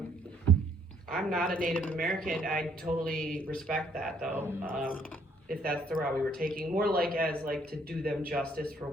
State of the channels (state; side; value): normal; both; correlation 0.65